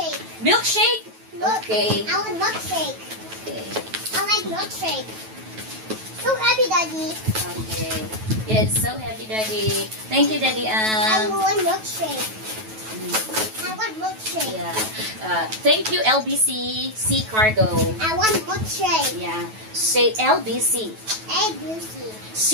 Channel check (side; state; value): left; late; 9.2 ms